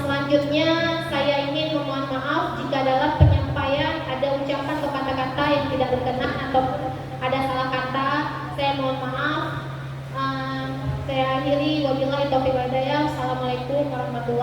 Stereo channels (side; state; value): both; identical; correlation 1.00